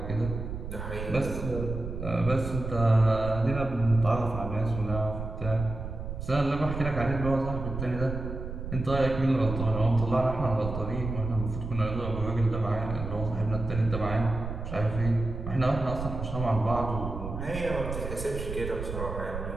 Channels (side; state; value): right; noise; rumble, 6 dB below the sound